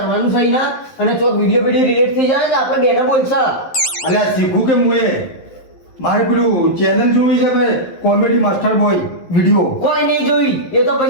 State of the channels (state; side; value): late; right; 11 ms